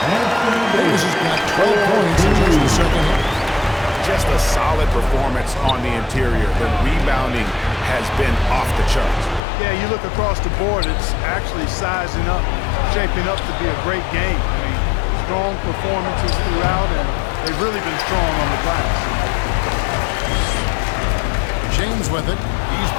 Davis has got 12 points in just the second half. Just a solid performance on the interior. The rebounding has been off the charts. Yeah, you look across the board, it's actually sizing up, shaping up to be a great game. I mean, strong performances throughout, and they've really been strong on the glass. James with it. He's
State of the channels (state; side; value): drops out; right; at 9.4 s